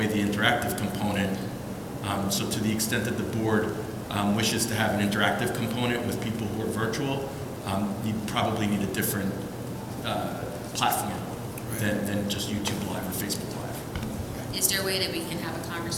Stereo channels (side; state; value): both; identical; correlation 1.00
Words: the interactive component. So to the extent that the board wishes to have an interactive component with people who are virtual, you probably need a different platform than just YouTube Live or Facebook Live. Is there a way that we can have a